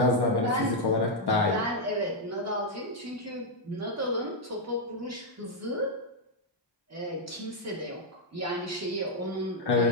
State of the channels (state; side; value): normal; both; correlation -0.02